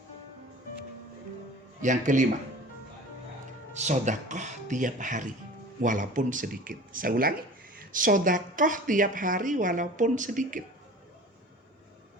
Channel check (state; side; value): normal; both; correlation 0.41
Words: Yang kelima, sedekah tiap hari walaupun sedikit. Saya ulangi, sedekah tiap hari walaupun sedikit.